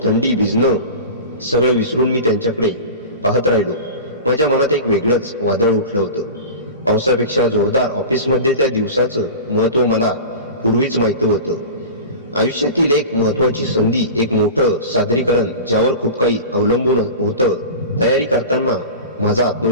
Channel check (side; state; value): both; inverted; correlation -0.32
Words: थंडी, भिजणं सगळं विसरून मी त्यांच्याकडे पाहत राहिलो. माझ्या मनात एक वेगळंच वादळ उठलं होतं. पावसापेक्षा जोरदार. ऑफिसमध्ये त्या दिवसाचं महत्त्व मला पूर्वीच माहित होतं. आयुष्यातील एक महत्त्वाची संधी, एक मोठं सादरीकरण ज्यावर खूप काही अवलंबून होतं. तयारी करताना माझा